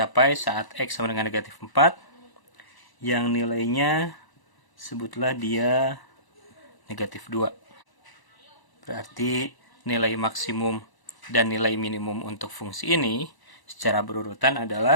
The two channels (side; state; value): right; late; 1.0 ms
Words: saat x sama dengan negatif 4, yang nilainya sebutlah dia negatif 2. Berarti nilai maksimum dan nilai minimum untuk fungsi ini secara berurutan